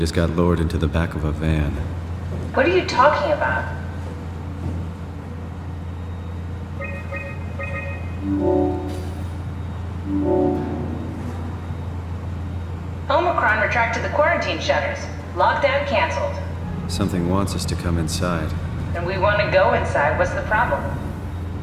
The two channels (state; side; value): identical; both; correlation 1.00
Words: got lowered into the back of a van? What are you talking about? Omicron retracted the quarantine shutters. Lockdown canceled. Something wants us to come inside. And we want to go inside. What's the problem?